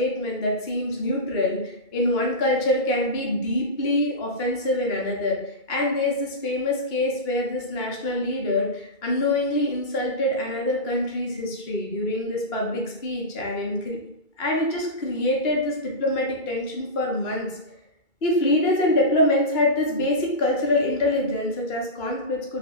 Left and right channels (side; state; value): right; late; 2.3 ms